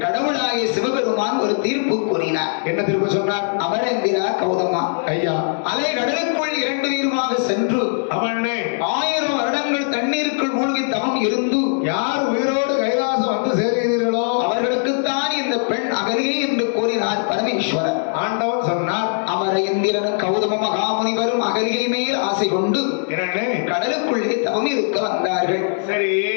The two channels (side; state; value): right; silent; 65 dB below the other